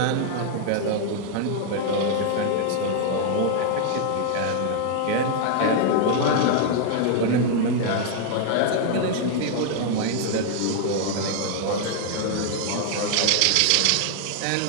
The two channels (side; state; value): both; different; correlation 0.00